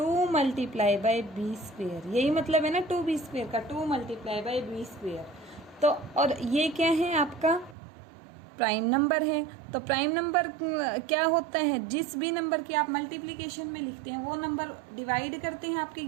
मल्टीप्लाई बाई b स्क्वेयर। यही मतलब है ना 2b स्क्वेयर का, 2 मल्टीप्लाई बाई b स्क्वेयर। तो और ये क्या है, आपका प्राइम नंबर है। तो प्राइम नंबर क्या होता है, जिस भी नंबर की आप मल्टीप्लिकेशन में लिखते हैं वो नंबर डिवाइड करते हैं आपके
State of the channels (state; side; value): drops out; left; at 7.8 s